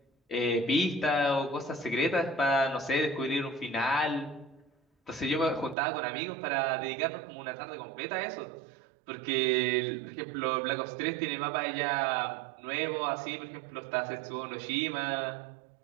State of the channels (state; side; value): drops out; left; at 5.8 s